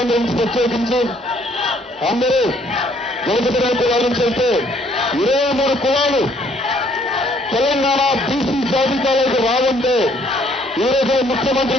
నుంచి ప్రత్యేకించి అందరూ వెనుకబడిన కులాల నుంచి వెళ్తే 23 కులాలు తెలంగాణ బీసీ జాబితాలోకి రావంటే ఈ రోజు ముఖ్యమంత్రి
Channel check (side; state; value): both; normal; correlation 0.64